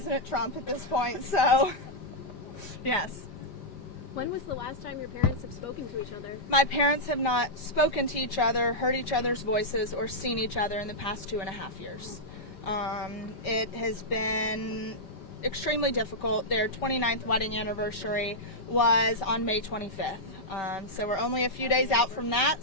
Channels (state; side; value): late; right; 5.2 ms